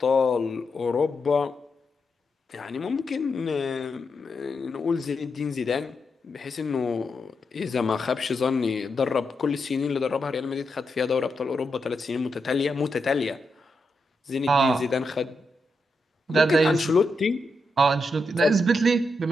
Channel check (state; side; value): normal; both; correlation 0.84